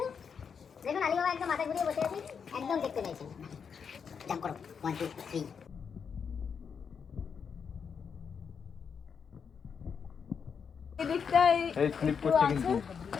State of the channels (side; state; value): right; quieter; 6.5 dB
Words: দেখুন আলী বাবা একদম মাথা ঘুরিয়ে বসে আছে, একদম দেখতে পাইছেন। জাম্প করো 1 2 3। এদিকটাই এই স্লিপ করছে কিন্তু।